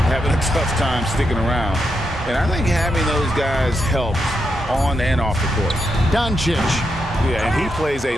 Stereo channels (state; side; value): normal; both; correlation 0.83